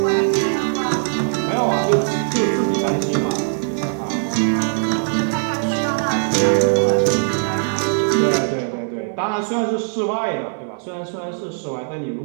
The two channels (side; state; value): left; silent; 66 dB below the other